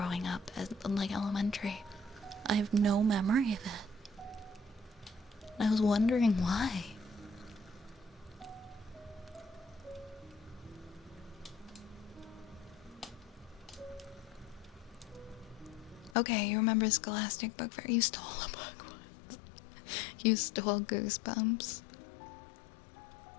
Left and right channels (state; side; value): drops out; right; at 16.2 s